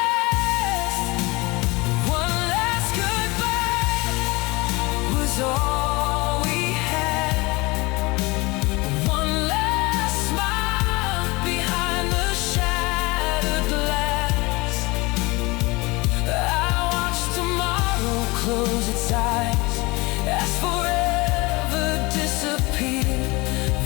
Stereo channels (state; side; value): quieter; right; 24.0 dB